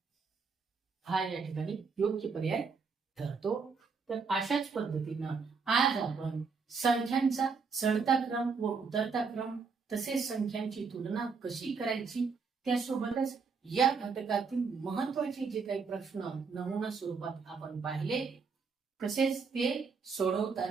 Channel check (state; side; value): quieter; left; 5.1 dB